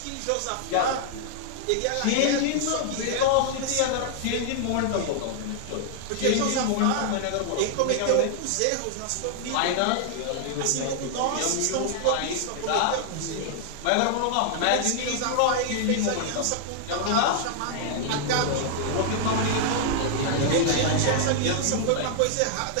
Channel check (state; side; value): different; both; correlation -0.01